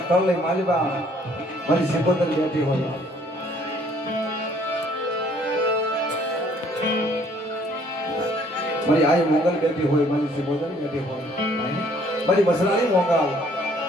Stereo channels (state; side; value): normal; both; correlation 0.61